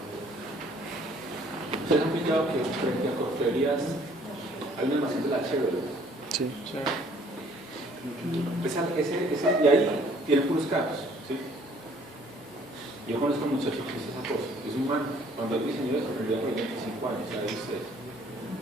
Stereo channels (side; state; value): both; normal; correlation 0.59